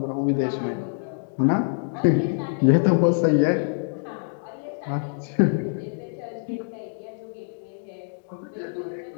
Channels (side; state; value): right; silent; digital silence